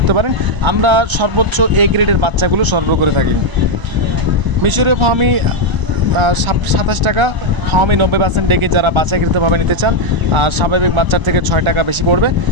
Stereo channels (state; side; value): late; left; 1.0 ms